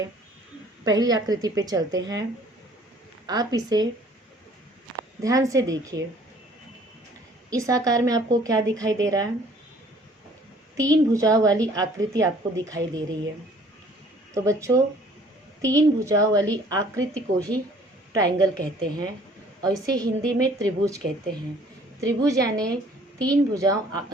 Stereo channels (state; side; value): normal; both; correlation 0.56